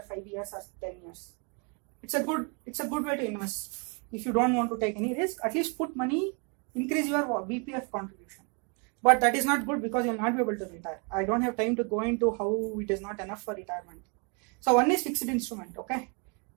5 years or 10 years. It's a good way to invest. If you don't want to take any risk, at least put money, increase your BPF contribution. But that is not good because you will not be able to retire. I don't have time to go into how it is not enough for retirement. So one is fixed instrument. Okay,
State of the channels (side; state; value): left; quieter; 34.4 dB